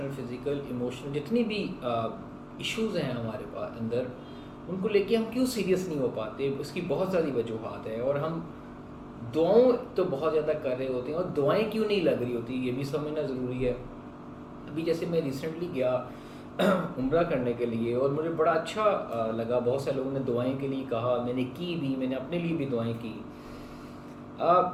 فزیکل، ایموشنل، جتنی بھی ایشوز ہیں ہمارے پاس اندر، ان کو لے کے ہم کیوں سیریس نہیں ہو پاتے. اس کی بہت ساری وجوہات ہیں، اور ہم دعاؤں تو بہت زیادہ کر رہے ہوتے ہیں، اور دعائیں کیوں نہیں لگ رہی ہوتی یہ بھی سمجھنا ضروری ہے. ابھی جیسے میں ریسنٹلی گیا عمرہ کرنے کے لیے، اور مجھے بڑا اچھا لگا. بہت سے لوگوں نے دعائیں کے لیے کہا، میں نے کی بھی، میں نے اپنے لیے بھی دعائیں کی.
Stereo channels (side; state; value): both; identical; correlation 1.00